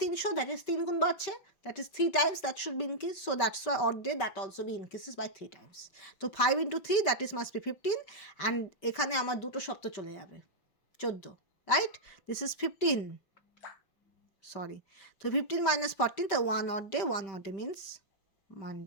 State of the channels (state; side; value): late; right; 5.1 ms